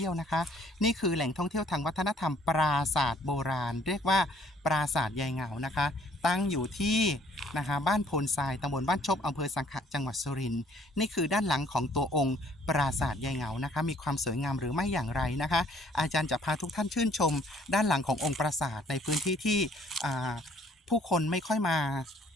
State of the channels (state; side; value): normal; both; correlation 0.60